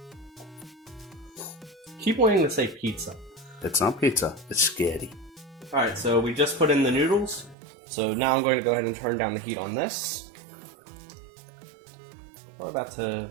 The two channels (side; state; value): left; drops out; at 7.6 s